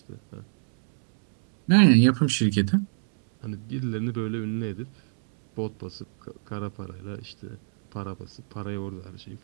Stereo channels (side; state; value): left; silent; 61 dB below the other